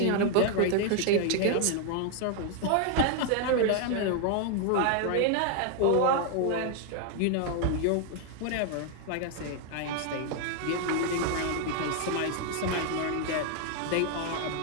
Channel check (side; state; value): both; different; correlation 0.00